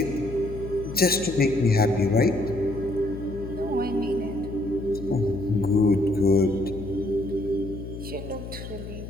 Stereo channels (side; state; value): left; noise; hum, 10 dB below the sound